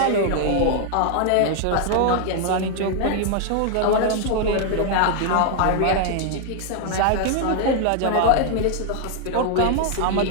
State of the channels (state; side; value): different; both; correlation 0.00